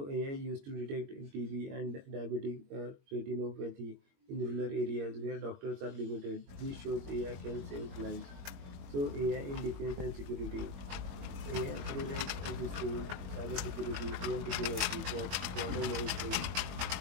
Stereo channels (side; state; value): left; late; 21 ms